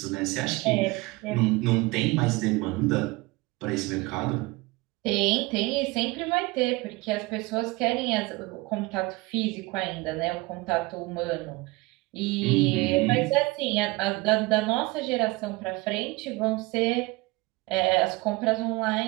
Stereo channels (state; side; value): quieter; left; 22.8 dB